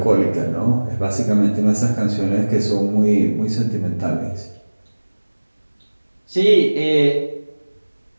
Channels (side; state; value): both; inverted; correlation -1.00